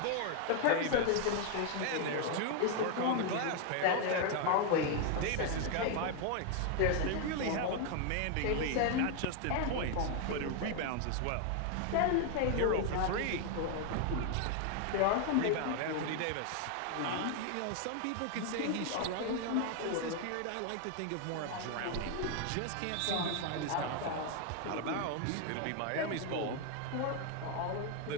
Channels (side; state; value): both; different; correlation 0.00